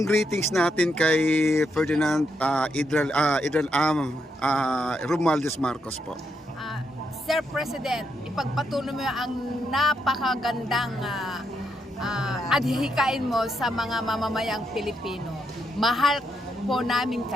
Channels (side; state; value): both; normal; correlation 0.80